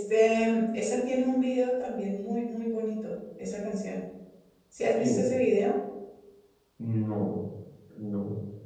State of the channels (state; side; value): identical; both; correlation 1.00